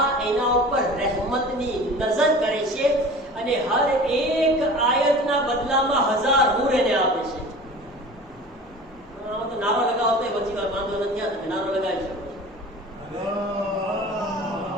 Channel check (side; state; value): both; normal; correlation 0.39